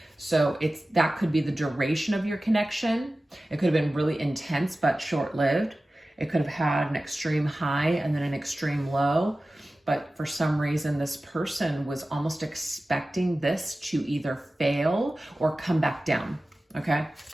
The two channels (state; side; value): normal; both; correlation 0.96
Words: So that could be the duration of your connection. It could have been really intense, but short-lived. It could have had an extreme high and then an extreme low. But for some reason, this person was almost expecting this to either fail or come back down, okay?